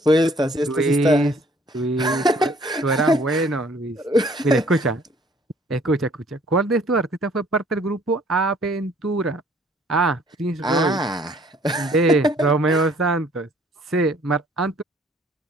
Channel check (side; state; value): both; normal; correlation 0.58